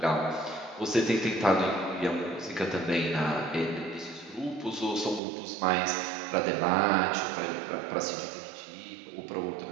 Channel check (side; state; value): left; drops out; at 5.2 s